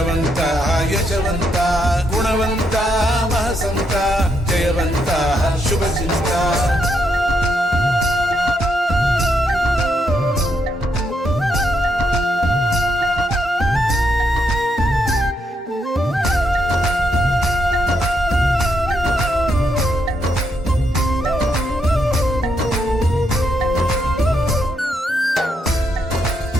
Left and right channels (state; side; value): normal; both; correlation 0.78